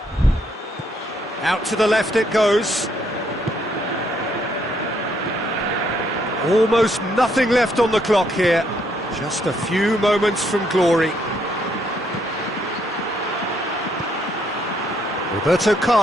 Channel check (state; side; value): normal; both; correlation 0.72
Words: Out to the left it goes. Almost nothing left on the clock here. Just a few moments from glory. Roberto